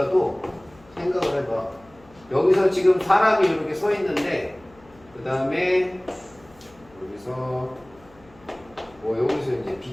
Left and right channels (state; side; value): noise; left; hum, 27 dB below the sound